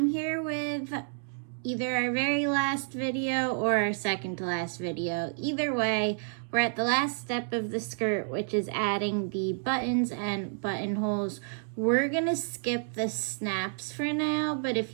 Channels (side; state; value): left; silent; digital silence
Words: here with either our very last video or our second to last video. Either way, we're at the last step of the skirt, which is adding the buttons and buttonholes. We're gonna skip the snaps for now, but if